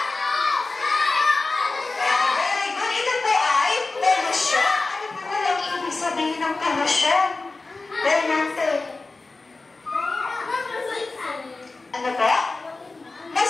Very good. Ito po ay pollution. Ano po walang ibig sabihin ng pollution? Bernante. Ano po?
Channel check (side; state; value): right; quieter; 3.5 dB